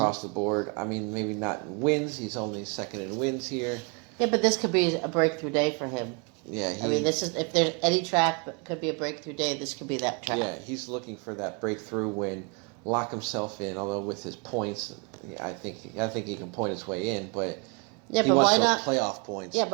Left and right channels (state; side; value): quieter; left; 32.8 dB